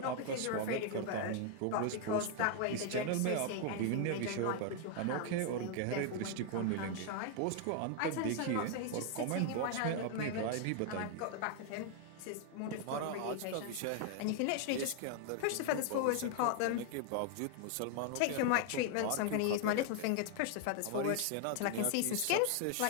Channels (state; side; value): different; both; correlation 0.00